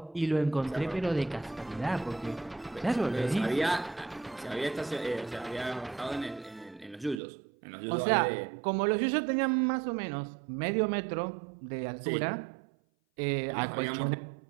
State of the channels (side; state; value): left; drops out; at 7.2 s